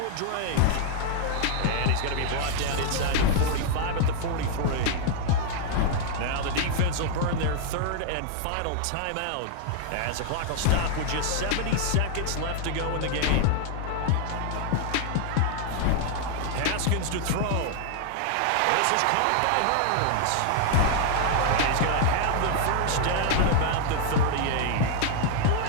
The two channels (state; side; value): different; both; correlation 0.00